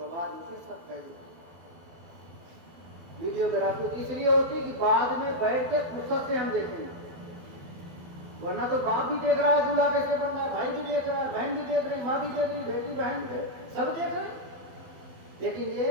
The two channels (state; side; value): late; left; 12 ms